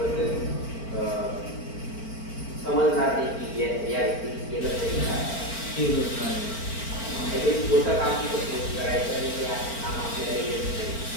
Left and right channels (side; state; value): right; late; 4.4 ms